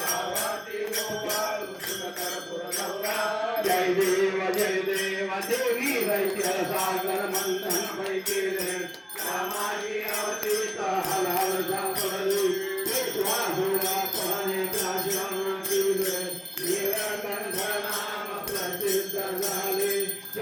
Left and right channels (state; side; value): identical; both; correlation 1.00